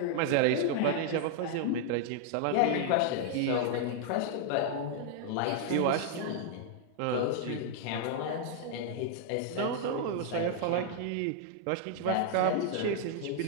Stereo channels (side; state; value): both; different; correlation 0.00